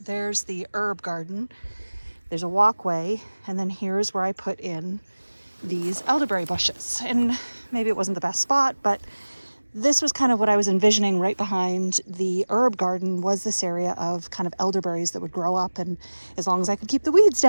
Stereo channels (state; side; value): inverted; both; correlation -1.00